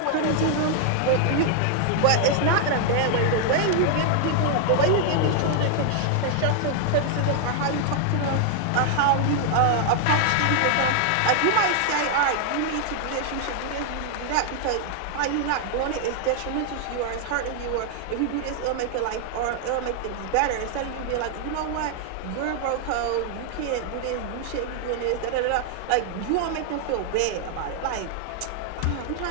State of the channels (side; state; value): both; different; correlation 0.00